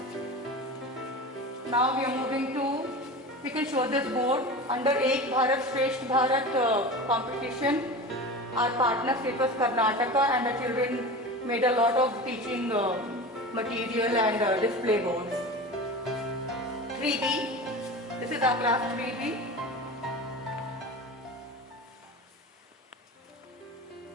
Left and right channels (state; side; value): normal; both; correlation 0.31